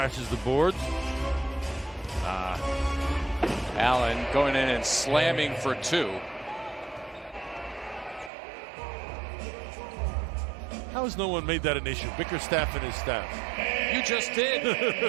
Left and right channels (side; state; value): left; drops out; at 8.3 s